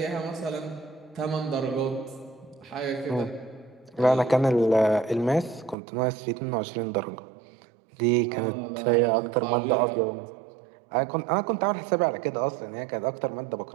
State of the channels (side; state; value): left; drops out; at 5.8 s